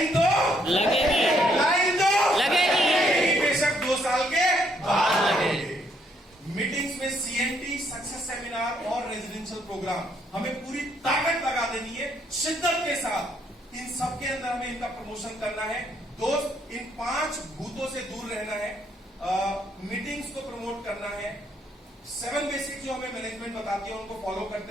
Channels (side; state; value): both; normal; correlation 0.71